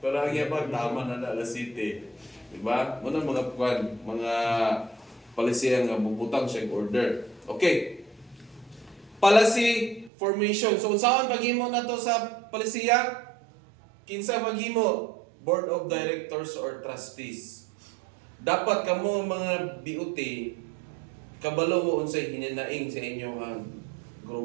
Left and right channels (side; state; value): left; drops out; at 10.1 s